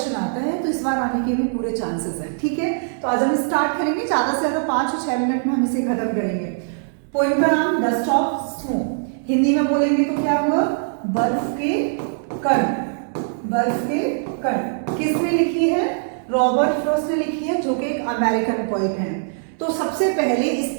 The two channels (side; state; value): left; silent; digital silence